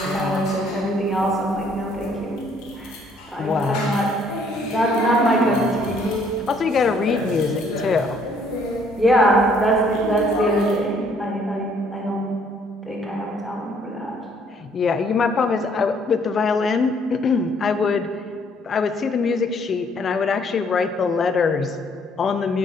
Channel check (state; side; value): normal; both; correlation 0.64